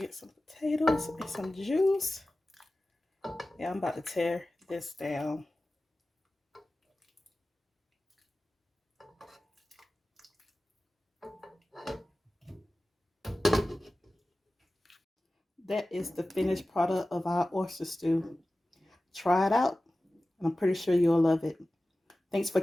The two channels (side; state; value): both; normal; correlation 0.96